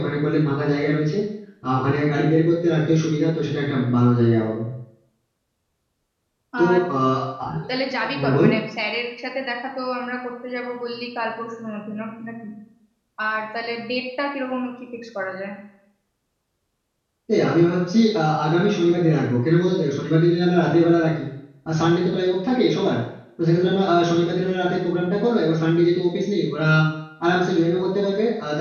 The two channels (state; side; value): identical; both; correlation 1.00